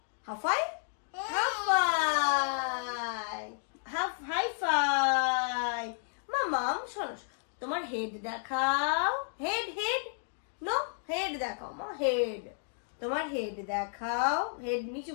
হাফাই মামাম। শোনো, তোমার হেড দেখাও, হেড নো, হেড দেখাও মা, হেড। তোমার হেড দেখাও, হেড নিচু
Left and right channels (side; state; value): right; silent; digital silence